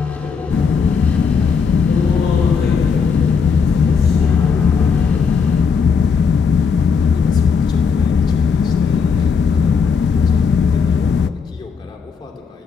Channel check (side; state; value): right; quieter; 5.8 dB